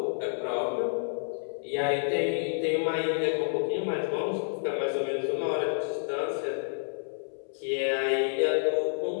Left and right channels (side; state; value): right; silent; 58 dB below the other